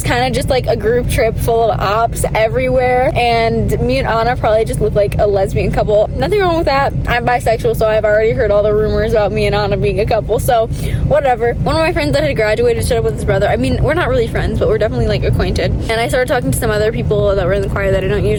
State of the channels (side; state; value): both; identical; correlation 1.00